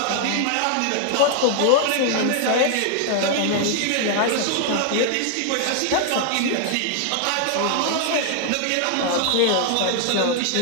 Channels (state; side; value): different; both; correlation 0.00